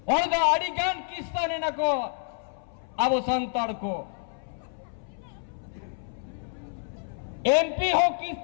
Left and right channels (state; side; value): silent; right; 59 dB below the other